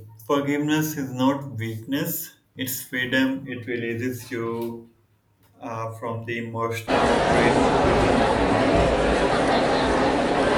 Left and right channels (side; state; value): both; identical; correlation 1.00